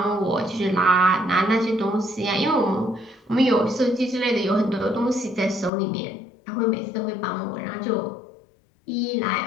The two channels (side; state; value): right; drops out; at 5.7 s